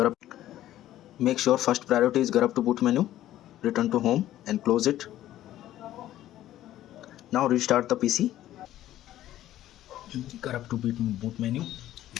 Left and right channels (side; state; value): right; quieter; 13.4 dB